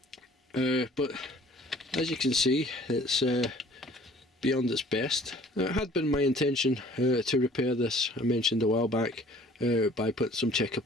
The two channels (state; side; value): normal; both; correlation 0.52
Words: But as you can see, it's beyond its best. It had been my intention to repair this, I mentioned a while back, by putting some checker